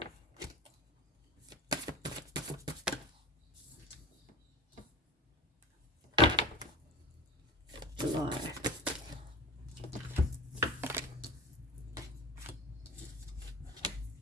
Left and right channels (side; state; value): both; normal; correlation 0.33